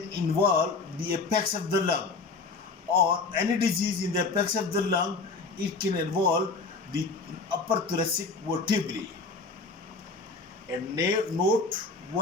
involve the apex of the lung, or any disease in the apex of the lung, it can involve the upper thoracic vertebrae. And note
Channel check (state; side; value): quieter; right; 4.1 dB